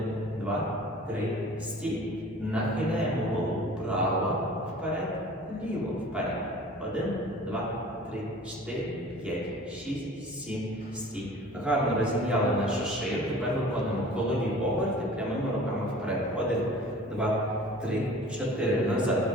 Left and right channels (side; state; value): both; normal; correlation 0.45